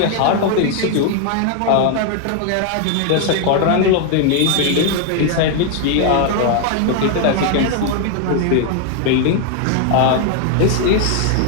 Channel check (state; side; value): different; both; correlation 0.00